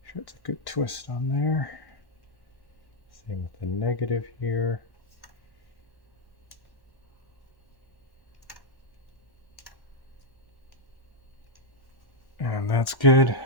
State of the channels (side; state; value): right; late; 1.1 ms